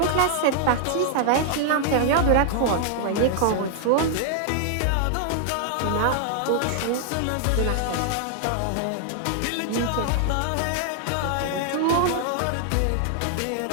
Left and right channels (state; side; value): different; both; correlation 0.00